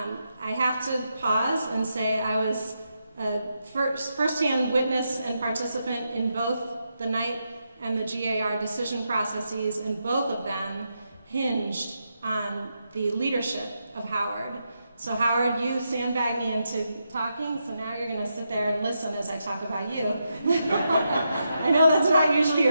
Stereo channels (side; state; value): both; inverted; correlation -0.84